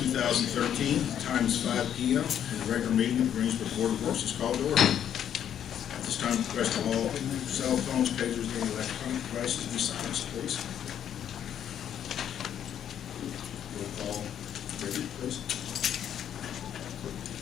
Time is 5 p.m. and the regular meeting of the Greensburg Board of Works is called to order. At this time, request all cell phones, pagers, and electronic devices be silenced, please. Roll call, Herbert, please.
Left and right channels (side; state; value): right; quieter; 9.6 dB